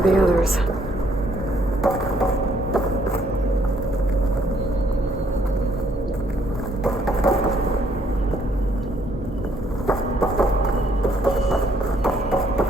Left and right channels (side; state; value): both; normal; correlation 0.67